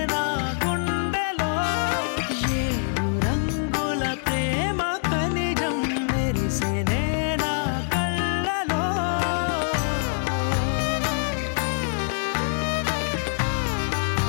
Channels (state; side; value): silent; right; digital silence